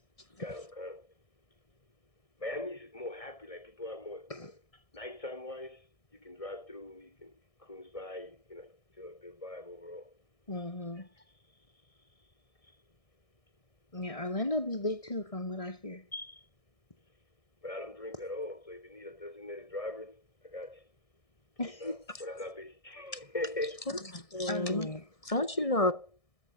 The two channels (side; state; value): right; late; 1.6 ms